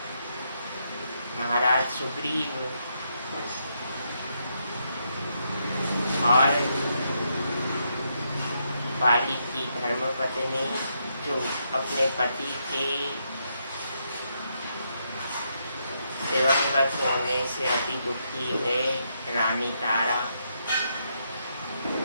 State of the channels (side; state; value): both; inverted; correlation -0.79